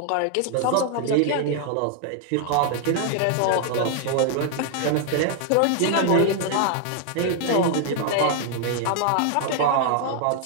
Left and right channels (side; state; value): both; different; correlation 0.00